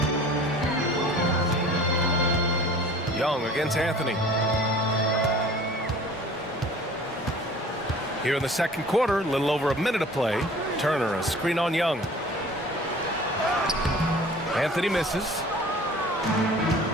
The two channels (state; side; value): normal; both; correlation 0.46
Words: Young against Anthony. Here in the second quarter, a little over a minute of play. Turner, a screen on Young. Anthony misses.